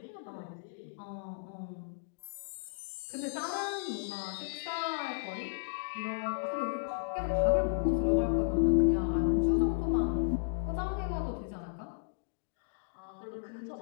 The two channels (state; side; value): silent; right; digital silence